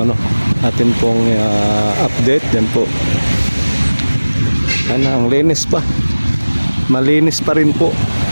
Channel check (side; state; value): both; inverted; correlation -1.00